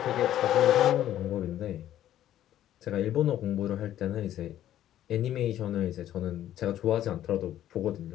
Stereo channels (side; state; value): right; quieter; 12.1 dB